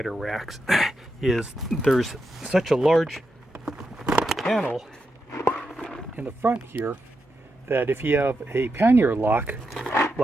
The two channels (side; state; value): both; normal; correlation 0.86